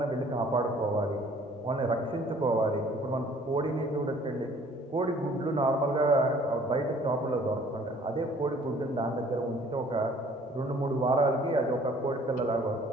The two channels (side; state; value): both; normal; correlation 0.55